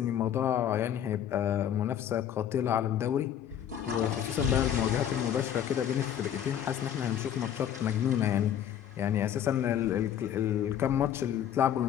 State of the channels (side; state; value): right; quieter; 9.9 dB